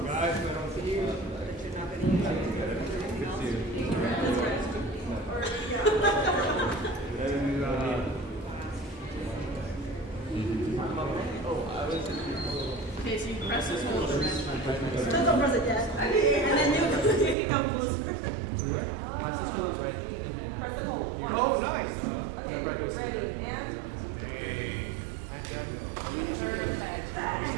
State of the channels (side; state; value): left; drops out; at 17.4 s